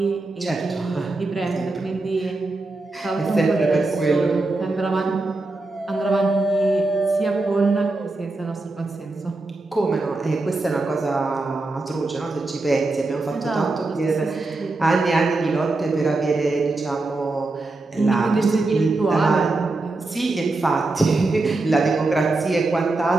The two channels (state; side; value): quieter; left; 3.2 dB